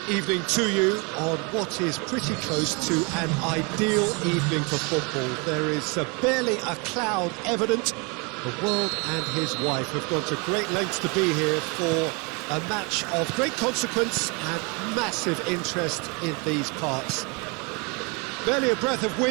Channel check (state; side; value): quieter; left; 31.1 dB